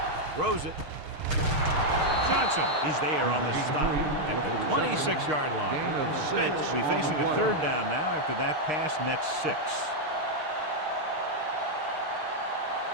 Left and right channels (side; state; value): left; late; 6.5 ms